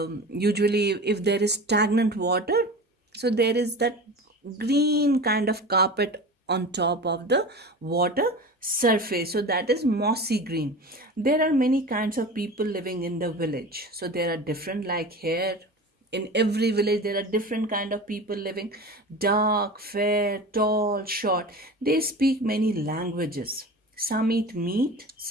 usually if there is stagnant water, so there is that green kind of carpet on top of the water surface, so that is mossy green. There are many kinds of people living in the village, so there are different, like here in every village there are different kind of people living: dark, fair, tall, short. They speak many languages. Some eat meat,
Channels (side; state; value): both; normal; correlation 0.33